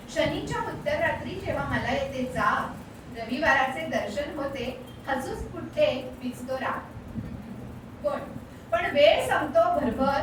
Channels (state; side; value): identical; both; correlation 1.00